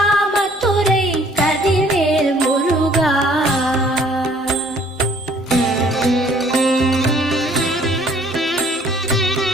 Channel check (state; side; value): normal; both; correlation 0.58